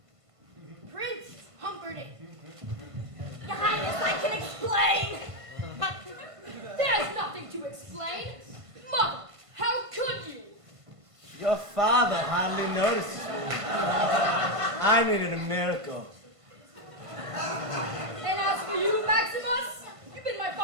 Prince Humperdinck. Your Highness, I can explain. There's nothing to explain. Mother, how could you? Your father hardly noticed me. I needed a miracle. And as for you, Maximus, you've been my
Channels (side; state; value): left; late; 1.5 ms